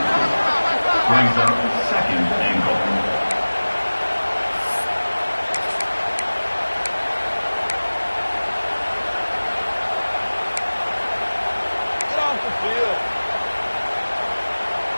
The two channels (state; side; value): inverted; both; correlation -1.00